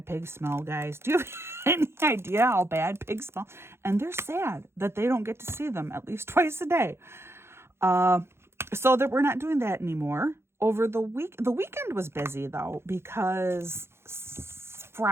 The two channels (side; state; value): left; late; 0.12 ms